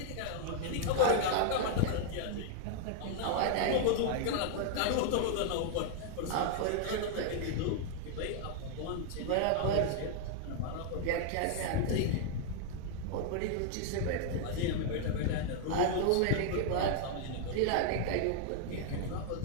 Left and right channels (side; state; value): both; different; correlation -0.01